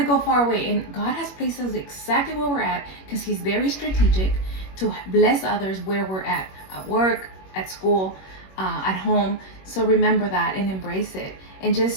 go far away. And God has placed us exactly where we're at, because He's very strategic to bless others where we're at work, at school, at home. So remember that and embrace it. and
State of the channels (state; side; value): late; right; 21 ms